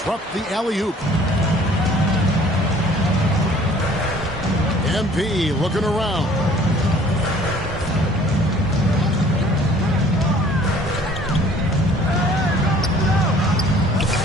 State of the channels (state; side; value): normal; both; correlation 0.54